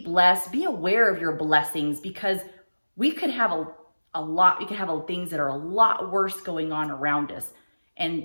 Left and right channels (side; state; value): both; inverted; correlation -1.00